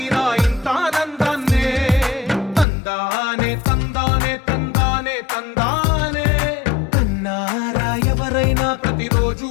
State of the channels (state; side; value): drops out; right; at 2.7 s